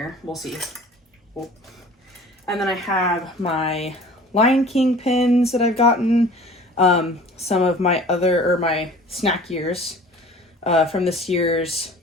We'll see. Oh. And then I have my Lion King pins that I've gotten, some of my my snack years from this year's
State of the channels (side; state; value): both; normal; correlation 0.45